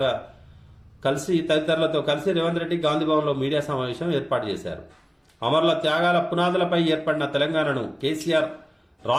తదితరులతో కలిసి రేవంత్ రెడ్డి గాంధీభవన్లో మీడియా సమావేశం ఏర్పాటు చేశారు. అమరుల త్యాగాల పునాదులపై ఏర్పడిన తెలంగాణను కేసీఆర్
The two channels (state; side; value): identical; both; correlation 1.00